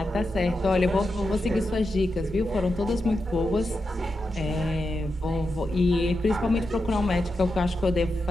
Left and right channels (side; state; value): both; normal; correlation 0.88